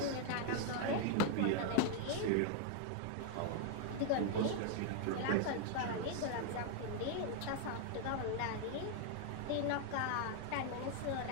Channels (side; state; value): both; different; correlation 0.00